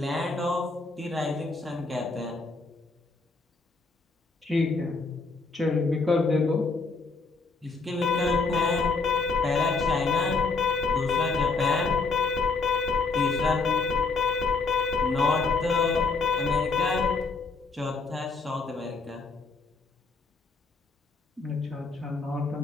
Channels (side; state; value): right; quieter; 4.1 dB